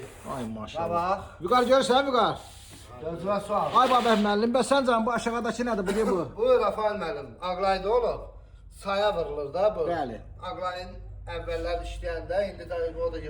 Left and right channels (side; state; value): both; identical; correlation 1.00